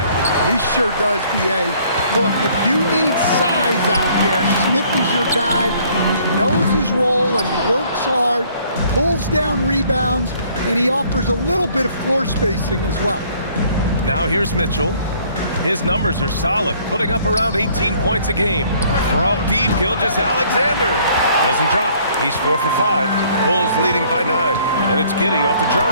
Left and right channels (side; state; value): both; inverted; correlation -0.60